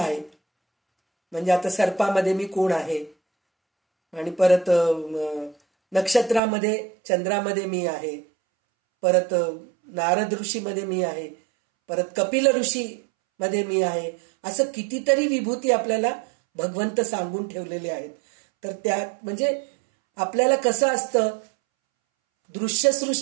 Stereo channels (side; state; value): left; drops out; at 6.4 s